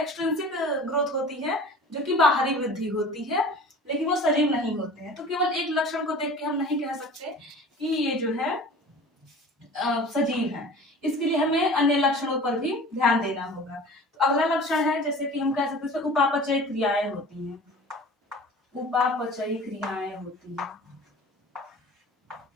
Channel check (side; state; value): both; normal; correlation 0.41